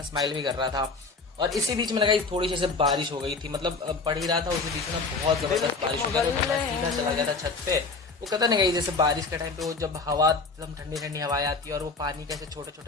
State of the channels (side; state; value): right; quieter; 4.0 dB